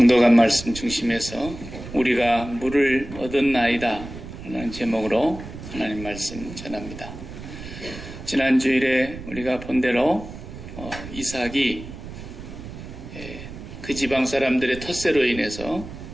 말씀 중심에서 우리가 물을 얻었나이다 라는 제목으로 하나님 말씀 전합니다. 지난 주일에 우리가 본 대로 이삭이 그 지방 사람들의 텃세로 인해서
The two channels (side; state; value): right; noise; rumble, 12 dB below the sound